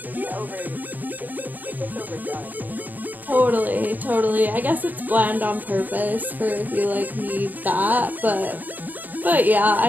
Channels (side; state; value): left; late; 0.085 ms